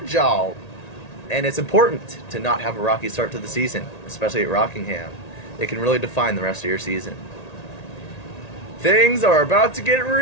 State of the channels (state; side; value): late; right; 1.9 ms